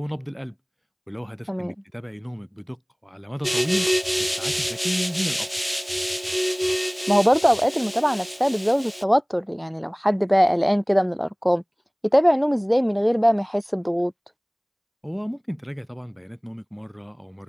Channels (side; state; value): both; identical; correlation 1.00